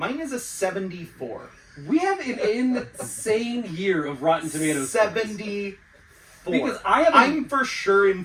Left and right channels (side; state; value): both; identical; correlation 1.00